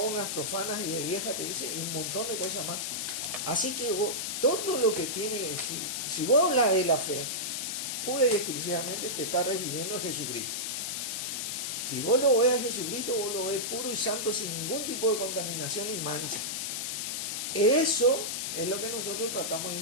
profanas y de vieja, te dice, y un montón de cosas más. Así que vos, todo lo que tiene, si vos hablas de la fe, pura y exclusivamente te está refiriendo a Jesucristo. Si vos lo ves a Jesucristo, vos lo ves puro y santo, sin ningún tipo de contaminación y mancha. Eso es lo que nosotros tratamos de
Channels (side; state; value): left; noise; hiss, 2 dB below the sound